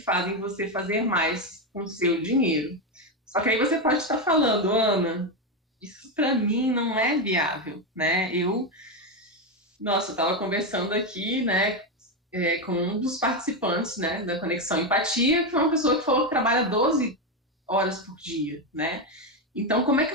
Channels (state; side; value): normal; both; correlation 0.09